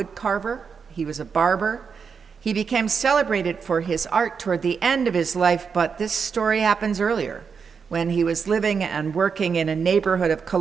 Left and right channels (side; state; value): left; quieter; 6.0 dB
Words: He was a barber. He became celebrated for his art toward the end of his life, but this story happens earlier, when he was living and working in a neighborhood of